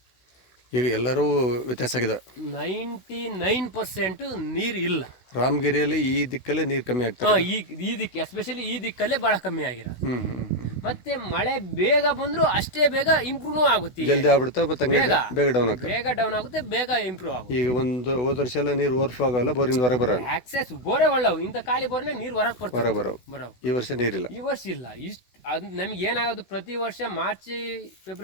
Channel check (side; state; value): right; late; 16 ms